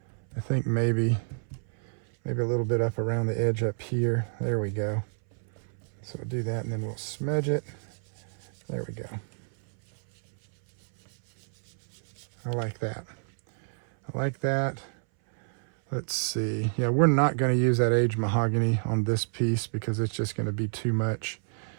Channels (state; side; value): silent; left; 59 dB below the other